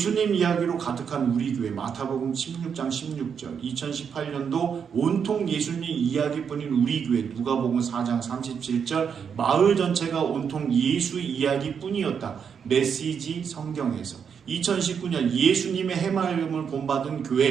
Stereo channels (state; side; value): quieter; left; 7.0 dB